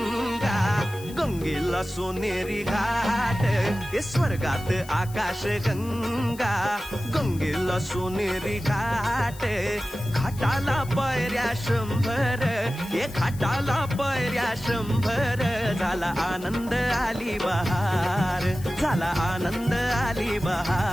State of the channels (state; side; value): noise; left; hiss, 18 dB below the sound